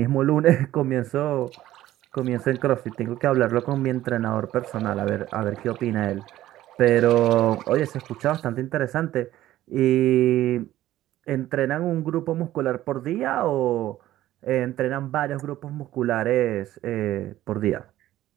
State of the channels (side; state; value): left; quieter; 14.2 dB